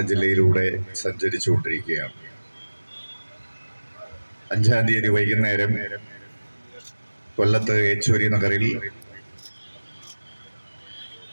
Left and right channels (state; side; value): inverted; both; correlation -1.00